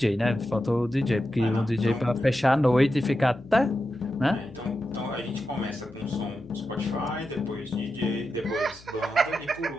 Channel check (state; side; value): noise; left; hum, 23 dB below the sound